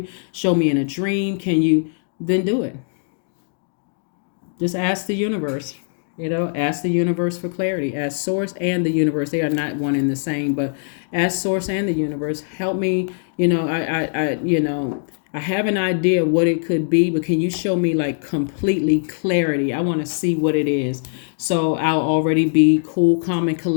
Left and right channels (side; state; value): right; silent; digital silence